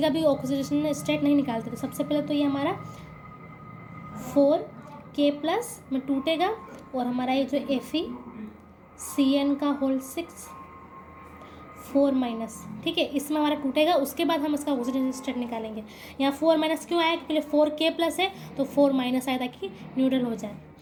का भी ऑक्सीडेशन स्टेट नहीं निकालते। तो सबसे पहले तो ये हमारा 4K+ में टूटेगा, और हमारा ये जो Fe CN का होल 6 4 माइनस, ठीक है, इसमें हमारा टूटेगा, उसके बाद हम इसका ऑक्सीजन स्टेट निकालेंगे। यहाँ 4 माइनस क्यों आया, पहले 4K प्लस है तो 4 माइनस आया ताकि न्यूट्रल हो जाए,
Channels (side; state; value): both; identical; correlation 1.00